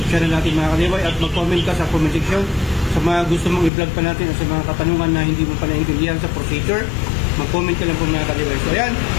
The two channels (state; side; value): drops out; right; at 3.7 s